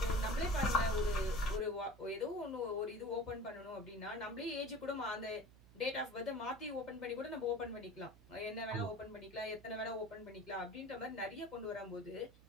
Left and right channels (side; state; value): right; noise; hum, 22 dB below the sound